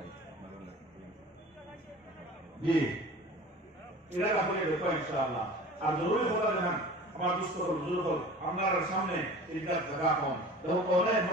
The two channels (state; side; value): normal; both; correlation 0.40